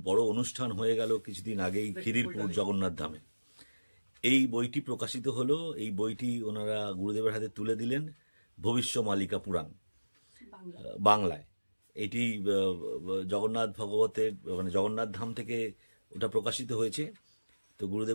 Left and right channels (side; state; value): both; inverted; correlation -1.00